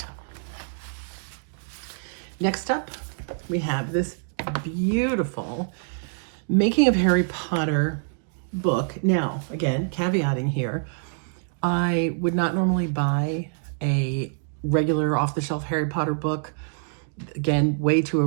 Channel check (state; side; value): silent; left; 61 dB below the other